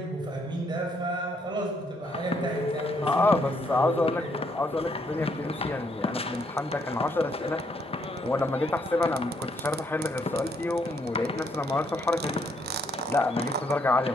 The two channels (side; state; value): both; normal; correlation 0.72